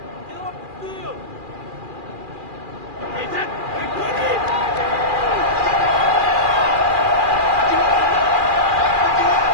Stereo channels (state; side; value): late; left; 2.4 ms